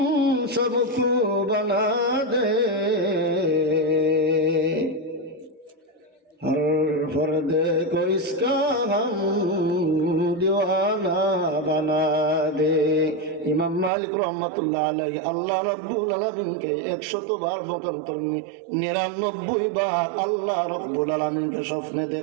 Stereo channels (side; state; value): left; drops out; at 13.9 s